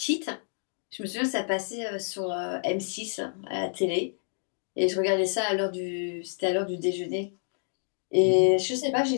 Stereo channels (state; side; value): silent; right; digital silence